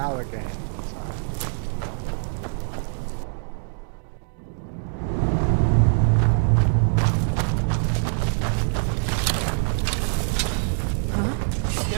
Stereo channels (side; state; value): left; silent; 63 dB below the other